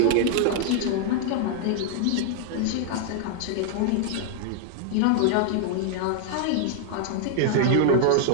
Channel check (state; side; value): different; both; correlation 0.00